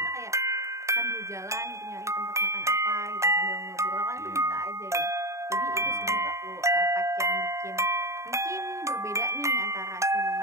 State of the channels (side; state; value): left; late; 0.14 ms